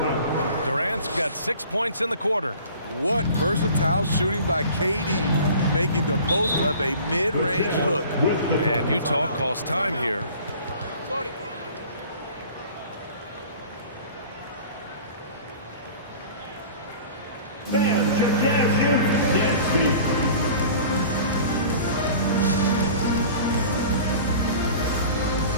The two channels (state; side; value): inverted; both; correlation -0.44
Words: Durant's got 6 points in the quarter. What versatile shooting by KD, making the most of a mid-range look. And Utah calls time here. Fans, your dance team.